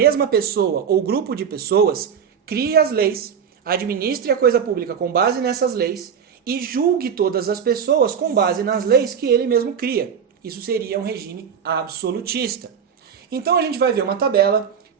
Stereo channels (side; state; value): left; quieter; 7.4 dB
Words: pessoa ou grupo de pessoas crie as leis, administre a coisa pública com base nessas leis e julgue todas as pessoas com base nas leis que ele mesmo cria. Isso seria um regime absolutista. Então a gente vai ver uma tabela